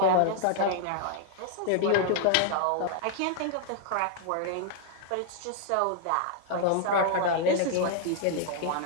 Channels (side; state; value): both; different; correlation -0.01